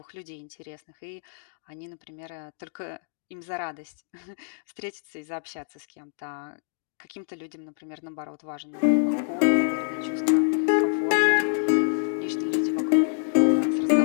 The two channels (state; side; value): silent; right; digital silence